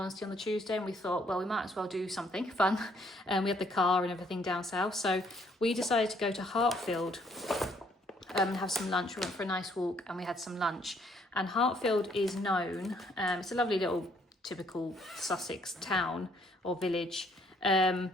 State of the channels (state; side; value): normal; both; correlation 0.66